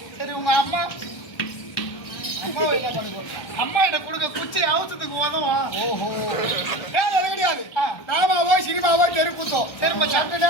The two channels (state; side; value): late; right; 1.3 ms